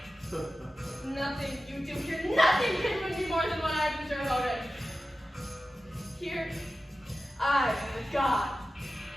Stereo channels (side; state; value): both; normal; correlation 0.94